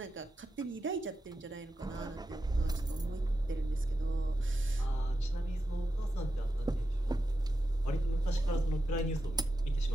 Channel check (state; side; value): normal; both; correlation 0.89